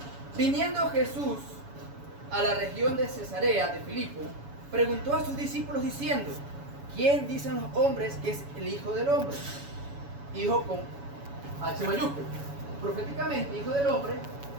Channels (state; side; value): late; left; 7.1 ms